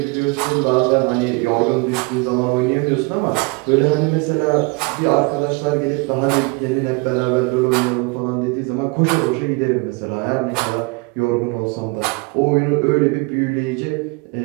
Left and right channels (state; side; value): quieter; left; 28.2 dB